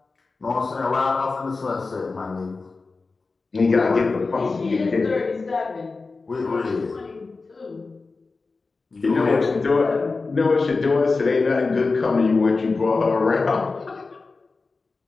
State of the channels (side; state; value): right; quieter; 4.0 dB